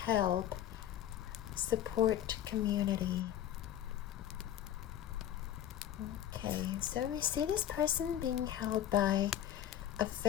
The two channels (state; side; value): quieter; right; 11.2 dB